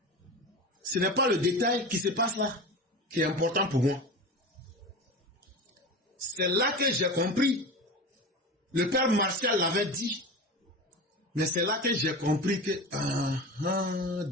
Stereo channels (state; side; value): normal; both; correlation 0.29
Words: ce n'est pas le détail qui se passe là qui est important pour moi. C'est là que j'ai compris. Le père Martial l'avait dit. Mais c'est là que j'ai compris que